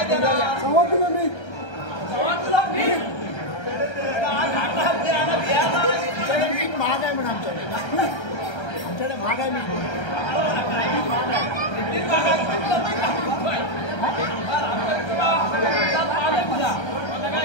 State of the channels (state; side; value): late; right; 1.3 ms